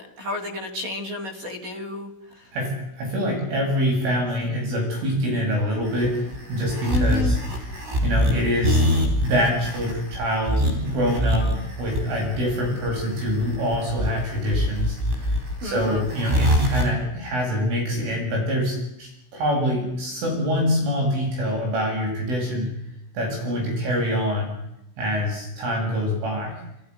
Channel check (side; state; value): left; late; 16 ms